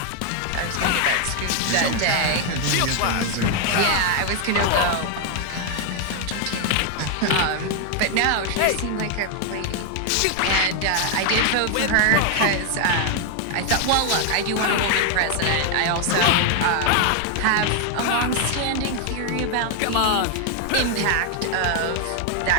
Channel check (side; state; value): both; different; correlation 0.00